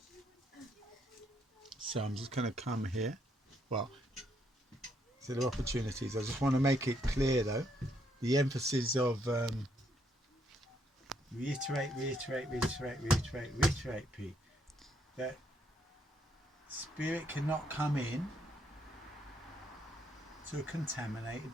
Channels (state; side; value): normal; both; correlation 0.73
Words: So I'm just going to come here. Well, so there are opportunities. I just want to make it clear though, the emphasis of reiterate, Pete, that spirit cannot come in to a contaminated